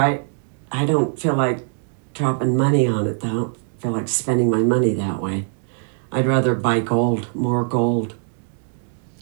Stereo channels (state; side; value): silent; left; 64 dB below the other